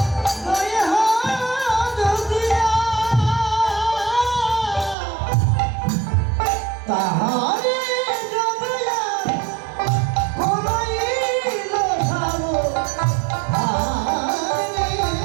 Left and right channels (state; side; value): drops out; left; at 5.0 s